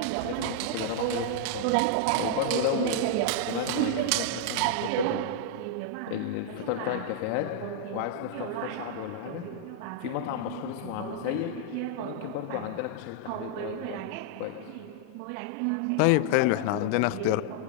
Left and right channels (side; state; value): both; different; correlation -0.01